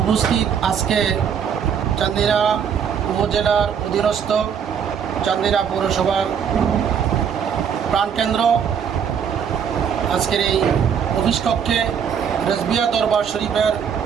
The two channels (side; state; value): left; quieter; 7.6 dB